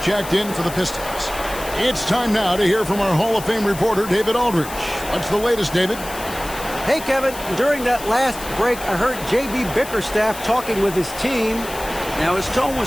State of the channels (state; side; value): noise; left; hiss, 13 dB below the sound